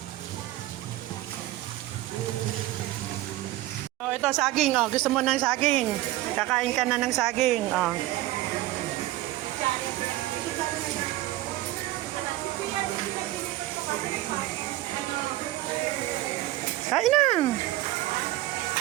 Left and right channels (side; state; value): left; quieter; 16.4 dB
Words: Oh, ito saging. Oh, gusto mo ng saging? Kakain ka na ng saging. Oh. Kain na.